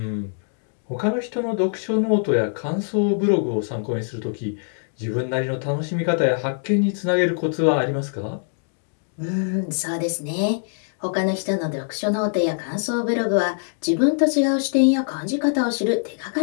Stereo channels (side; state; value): right; silent; digital silence